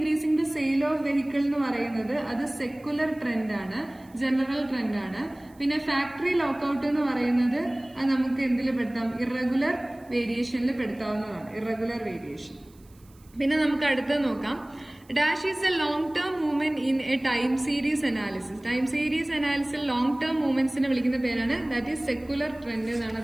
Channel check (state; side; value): noise; right; hiss, 30 dB below the sound